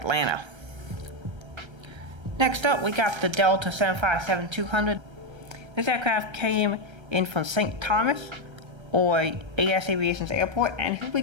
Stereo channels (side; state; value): left; late; 1.3 ms